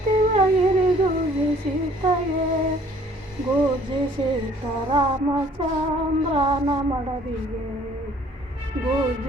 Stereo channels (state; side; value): normal; both; correlation 0.57